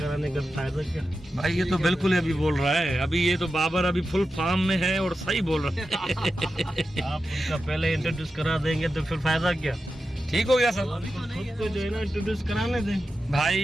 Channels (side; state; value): both; normal; correlation 0.91